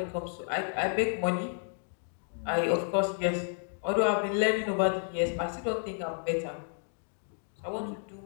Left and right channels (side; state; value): right; silent; 57 dB below the other